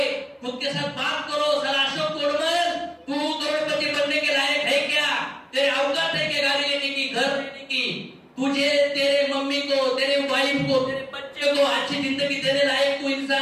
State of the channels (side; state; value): both; identical; correlation 1.00